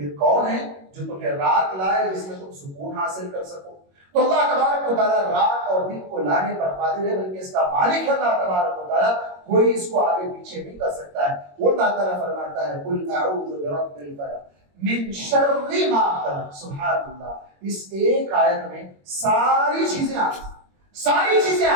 کون ہے جو تمہیں رات لائے جس میں تم سکون حاصل کر سکو؟ تو اللہ تبارک و تعالیٰ رات اور دن کو لانے پر قادر ہے، بلکہ اس کا مالک اللہ تبارک و تعالیٰ، کوئی اس کو آگے پیچھے نہیں کر سکتا ہے. وہ اللہ تعالیٰ فرماتا ہے قل اعوذ برب الفلق من شر ما خلق. سبحان اللہ، اس ایک آیت میں ساری چیزیں آ گئی، ساری چیزیں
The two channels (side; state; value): left; late; 21 ms